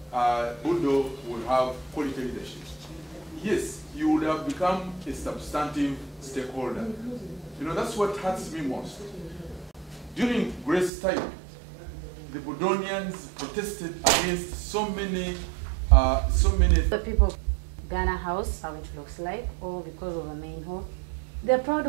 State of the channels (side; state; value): left; drops out; at 10.9 s